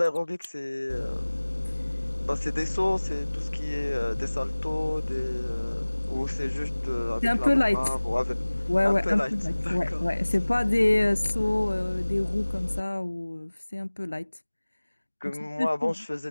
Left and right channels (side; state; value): both; inverted; correlation -1.00